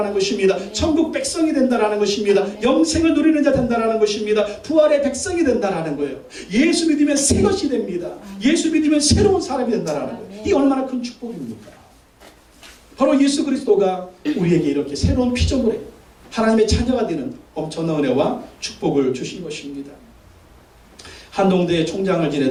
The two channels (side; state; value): both; identical; correlation 1.00